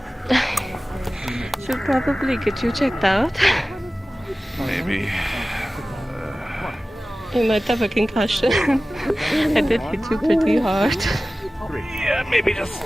Should probably get you checked out. Maybe. You might have a concussion. I did hit you pretty hard. Yeah, maybe just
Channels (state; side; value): normal; both; correlation 0.96